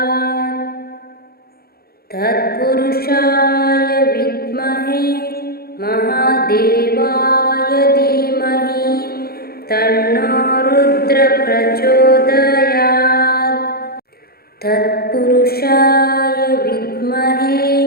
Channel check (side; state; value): right; late; 0.45 ms